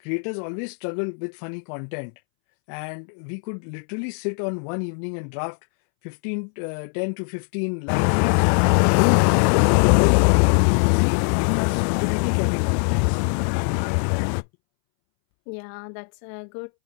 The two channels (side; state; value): right; silent; 64 dB below the other